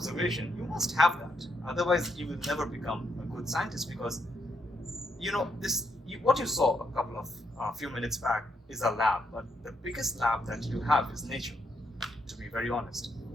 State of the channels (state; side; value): normal; both; correlation 0.78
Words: You must have that. Otherwise, you will never become a good scientist, because, what you saw a few minutes back is a lab, but the biggest lab that you have is nature, to be very honest.